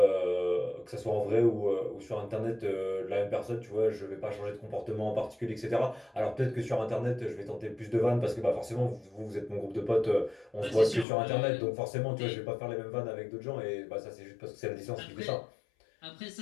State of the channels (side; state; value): right; drops out; at 11.1 s